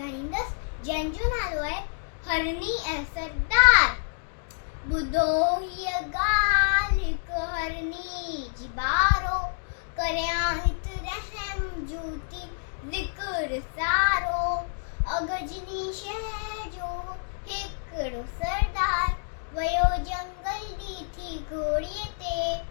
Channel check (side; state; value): right; silent; digital silence